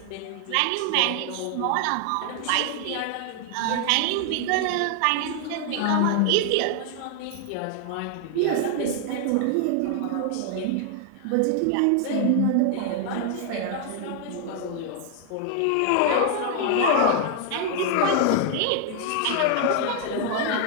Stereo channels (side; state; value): both; different; correlation 0.00